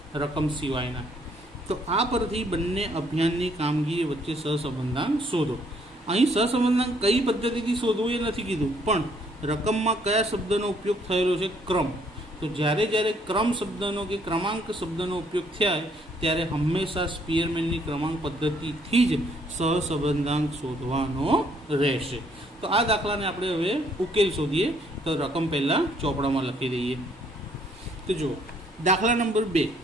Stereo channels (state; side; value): normal; both; correlation 0.66